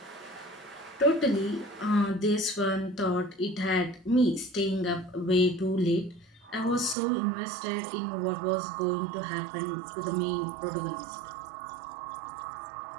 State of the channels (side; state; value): left; drops out; at 7.0 s